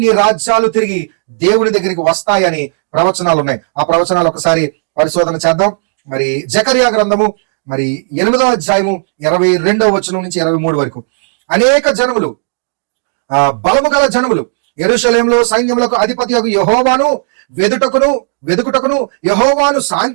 రాజ్యాలు తిరిగి దేవుని దగ్గరికి వస్తాయని ప్రవచనాలు ఉన్నాయి. ఆ ప్రవచనాలు ఒకసారి పరిశోధన చేద్దాం. మరి జకర్యా గ్రంథము మరి 8వ అధ్యాయము 22వ వచనం నుంచి 23 వరకు, అనేక జనములు, బలము గల జనములు యెరూషలేములో సైన్యములకు అధిపతి యెహోవాను వెదుకుటకును యెహోవాను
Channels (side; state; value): left; silent; digital silence